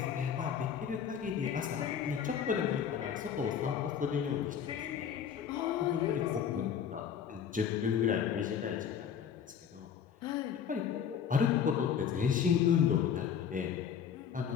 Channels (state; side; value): quieter; right; 7.9 dB